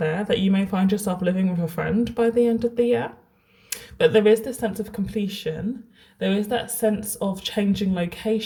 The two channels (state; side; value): identical; both; correlation 1.00